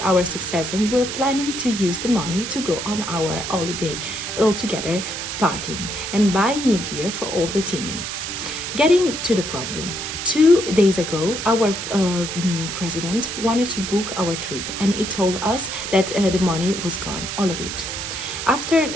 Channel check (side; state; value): right; noise; hiss, 5 dB below the sound